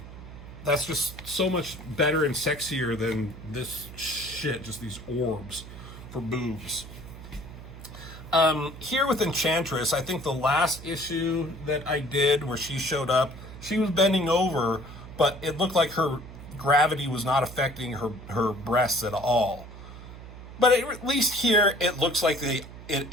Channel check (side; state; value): right; noise; hum, 14 dB below the sound